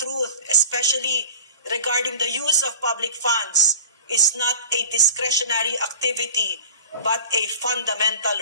especially regarding the use of public funds, is not a discretionary activity but a fundamental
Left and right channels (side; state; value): both; inverted; correlation -0.39